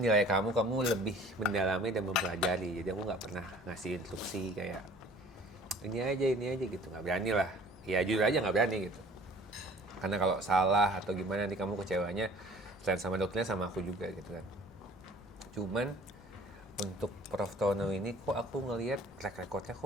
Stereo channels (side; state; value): both; normal; correlation 0.50